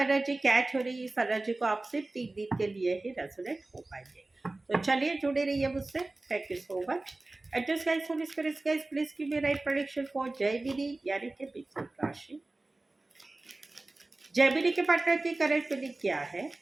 कैच हो रही है इस एनर्जी को आप सिर्फ 3 दिन के लिए ही रेजोनेट हो पाएंगे। तो चलिए जुड़े रहिए मुझसे। Thank you so much. And just guys, Holy Spirit, guys, please give me right prediction for जयविधि यानी कि मिथुन राशि। जयविधि के पार्टनर की करंट फीलिंग क्या है?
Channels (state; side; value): quieter; left; 3.0 dB